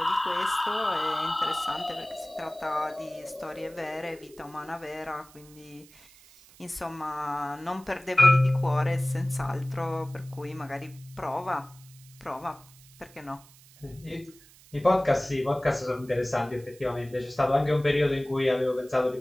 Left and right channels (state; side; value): noise; right; hiss, 24 dB below the sound